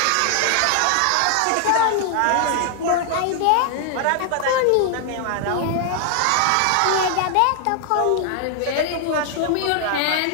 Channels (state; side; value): different; both; correlation 0.00